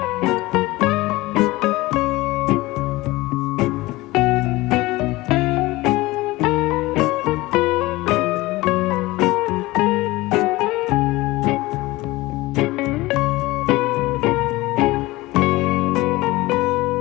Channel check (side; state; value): right; quieter; 19.9 dB